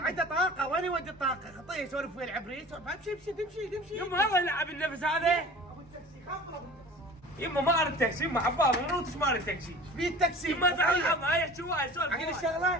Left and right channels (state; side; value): normal; both; correlation 0.42